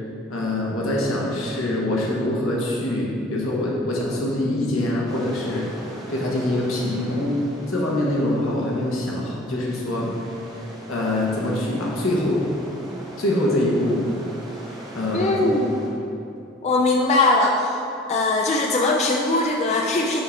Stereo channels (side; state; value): both; normal; correlation 0.44